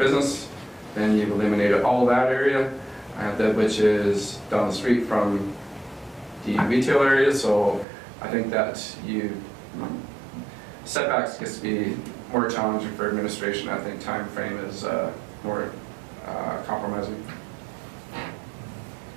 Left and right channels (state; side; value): drops out; left; at 7.9 s